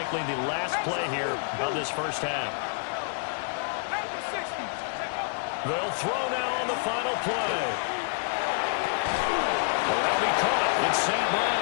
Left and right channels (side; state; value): right; silent; 59 dB below the other